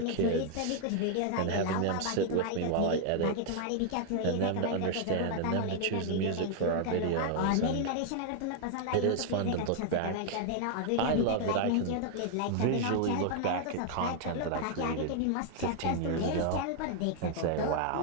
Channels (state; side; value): different; both; correlation 0.00